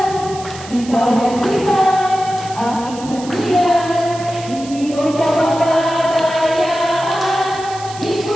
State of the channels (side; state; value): right; noise; hiss, 16 dB below the sound